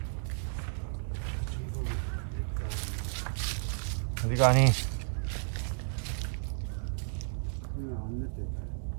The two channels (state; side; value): silent; left; digital silence